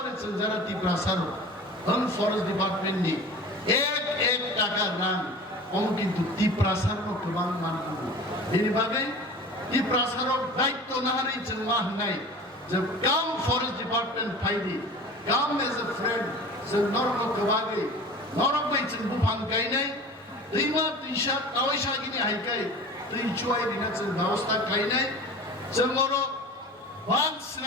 যারা ত্রিপুরা সারো ফরেস্ট ডিপার্টমেন্ট নি এক টাকা রান কম কিন্তু ত্রিপ্রাসারও গোबां मानगौ बेनि बागै ত্রিপ্রাসারও দায়িত্ব না হারি जों मा होननाय যে কাম ফরেস্ট ডিপার্টমেন্ট ফাইদি কাম এজ এ ফ্রেন্ড जों नरमखौ बागै नरमै जों बुफां गायनाय दैमा दैसा दावैसागिनि हायखाय दै जुवायरिना जों व्यवस्था गायनाय जों अरो बांध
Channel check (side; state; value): both; normal; correlation 0.38